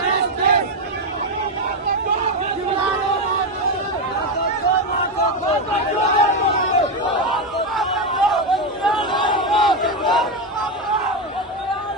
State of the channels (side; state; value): both; normal; correlation 0.09